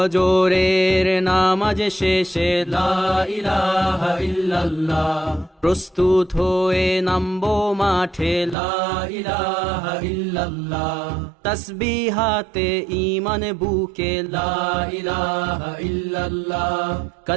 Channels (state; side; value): drops out; left; at 8.6 s